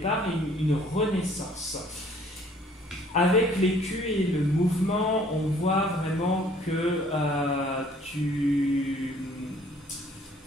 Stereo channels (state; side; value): normal; both; correlation 0.58